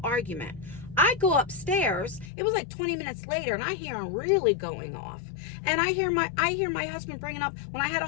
argument. I go upstairs, it was like 20 minutes later, and I hear him really going off. And I hear my husband bringing up when I had a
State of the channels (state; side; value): drops out; right; at 2.3 s